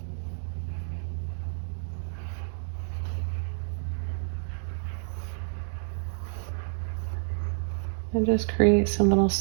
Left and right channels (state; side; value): silent; left; digital silence